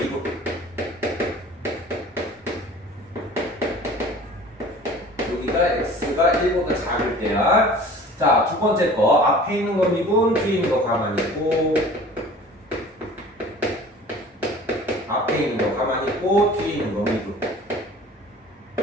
여기가 x가 1보다 작을 때야. 자, 두 번째 거 앞에 있는 거 미분, 뒤에 있는 거 가만히 있고, 앞에 있는 거 가만히 있고, 뒤에 있는 거 미분.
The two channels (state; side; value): normal; both; correlation 0.45